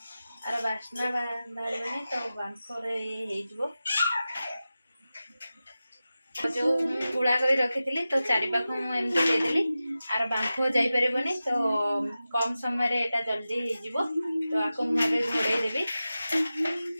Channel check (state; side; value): inverted; both; correlation -0.94